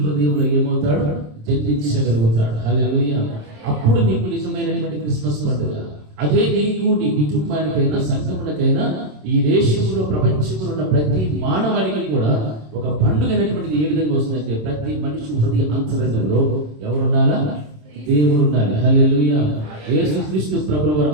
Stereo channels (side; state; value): left; late; 27 ms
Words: ఏమవుతాడు, జన్మించగలుగుతాడు. హల్లెలూయా. అప్పుడు నీకు నిజమైనటువంటి క్రిస్మస్ పండుగ. అదే నీకు, నీ కుటుంబానికైనా, సంఘమునకైనా, ఈ దేశంలో, ప్రపంచంలో ఉన్న ప్రతి మానవానికి కూడా ఒక పండుగ అనేటువంటిది ఏ విధంగా వస్తుందంటే ప్రతి మనిషి హృదయ అంతరంగంలో ఎవరుండాలా, దేవుడు ఉండాలి. హల్లెలూయా. యేసుక్రీస్తు ప్రభువు